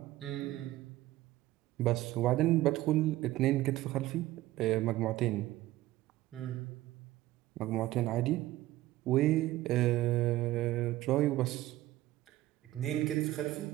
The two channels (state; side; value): quieter; left; 16.2 dB